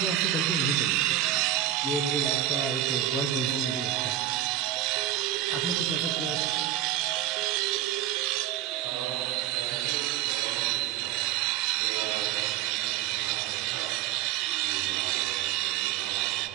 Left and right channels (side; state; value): left; quieter; 11.8 dB